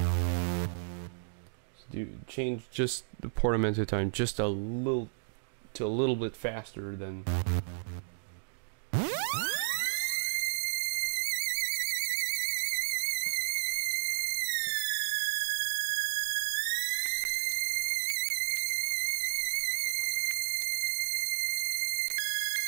change just the portamento time just a little to a little bit faster than...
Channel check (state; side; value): silent; left; digital silence